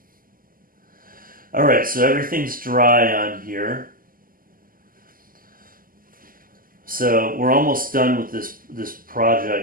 Alright, so everything's dry on here. So we're almost done with this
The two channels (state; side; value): late; left; 0.41 ms